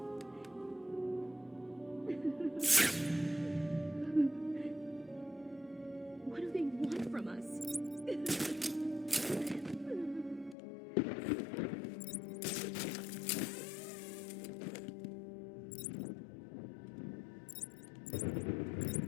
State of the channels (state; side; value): drops out; right; at 10.6 s